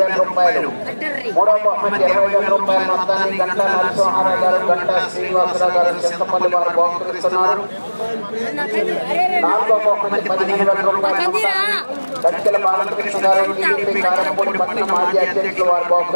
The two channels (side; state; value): both; inverted; correlation -1.00